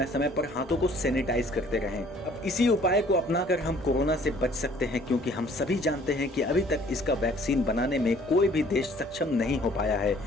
समय पर हाथों को सैनिटाइज करते रहें। अब इसी उपाय को अपनाकर हम कोरोना से बच सकते हैं, क्योंकि हम सभी जानते हैं कि अभी तक इसका वैक्सीन बनाने में कोई भी देश सक्षम नहीं हो पाया है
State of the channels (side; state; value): both; normal; correlation 0.56